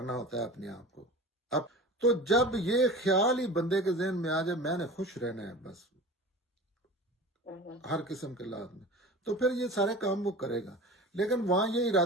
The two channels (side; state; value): both; normal; correlation 0.36